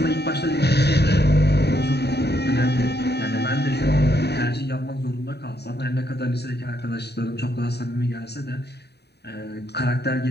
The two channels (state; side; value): late; right; 0.48 ms